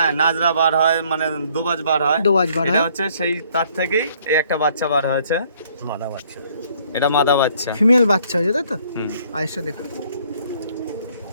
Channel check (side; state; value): both; inverted; correlation -0.63